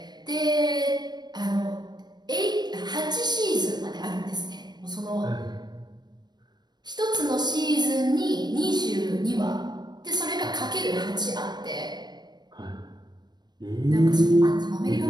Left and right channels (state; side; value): late; left; 0.20 ms